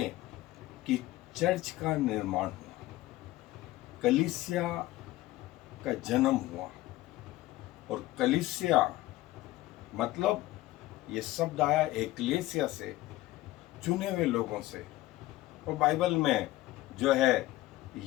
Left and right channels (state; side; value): quieter; right; 17.1 dB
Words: कि चर्च का निर्माण हुआ, कलीसिया का जन्म हुआ। और कलीसिया मतलब ये शब्द आया एक्लेसिया से, चुने हुए लोगों से। और बाइबल में जो है